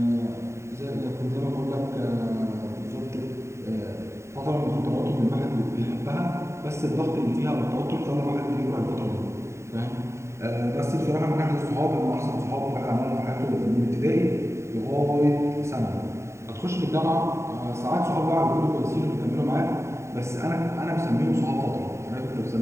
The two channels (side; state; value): left; late; 0.14 ms